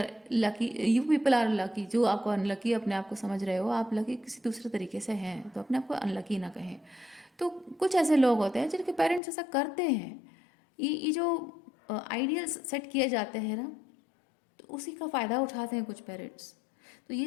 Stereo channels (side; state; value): right; drops out; at 9.2 s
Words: lucky, you people are lucky. जो आपको अनलकी अपने आप को समझ रहे हो, आप लकी किसी दूसरे तरीके से हैं, तो अपने आप को अनलकी ना कहें। तो कुछ ऐसे लोग होते हैं जिनके पेरेंट्स ऐसा करते हैं। ये जो आइडियल्स सेट किए जाते हैं ना, तो उसी का फ़ायदा उठाते हैं कुछ पेरेंट्स। तो ये